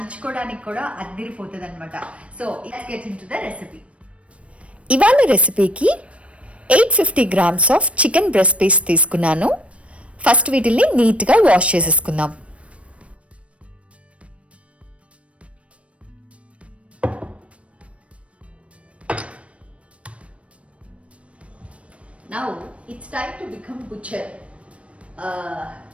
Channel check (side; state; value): left; late; 0.062 ms